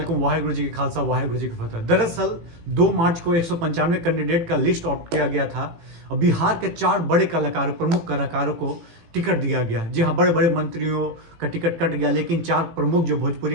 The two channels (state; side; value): late; left; 18 ms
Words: वाहिगुरु जी की खालसा, वाहिगुरु जी की फतह। दरअसल 2 मार्च को 195 कैंडिडेट का लिस्ट आउट किया गया था और बिहार के 4 बड़े कलाकारों, प्रमुख कलाकारों को टिकट दिया गया। जी हाँ, बड़े बड़े मंत्रियों का टिकट कट गया, लेकिन 4 प्रमुख जो